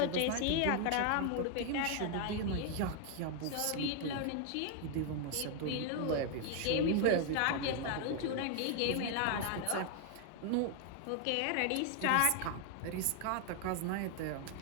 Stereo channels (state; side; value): different; both; correlation 0.00